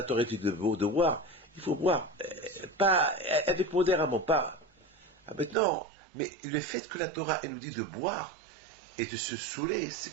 Torah dit de boire, il faut boire. Pas avec modérément, pas. Maintenant, mais le fait que la Torah, elle nous dit de boire et de se saouler,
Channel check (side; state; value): left; drops out; at 5.6 s